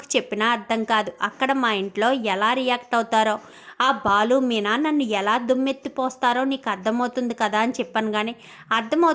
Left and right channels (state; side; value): identical; both; correlation 1.00